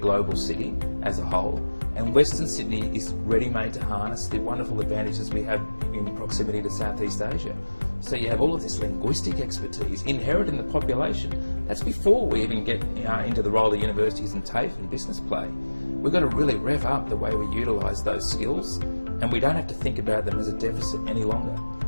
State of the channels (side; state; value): both; inverted; correlation -1.00